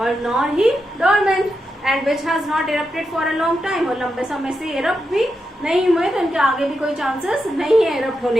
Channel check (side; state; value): both; normal; correlation 0.86